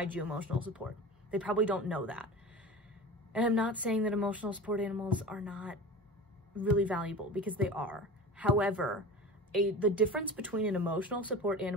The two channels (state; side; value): normal; both; correlation 0.33